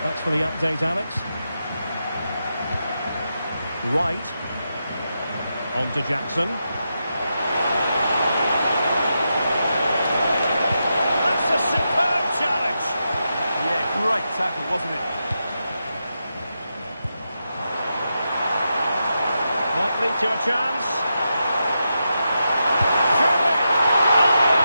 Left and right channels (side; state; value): both; inverted; correlation -0.87